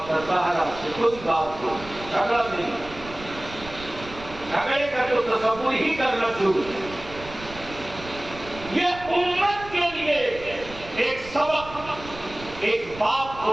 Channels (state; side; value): noise; right; rumble, 16 dB below the sound